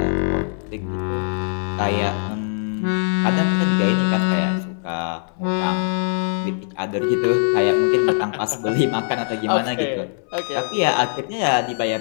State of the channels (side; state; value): right; silent; 64 dB below the other